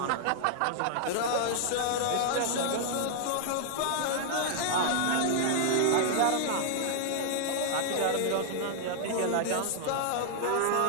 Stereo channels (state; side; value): different; both; correlation 0.00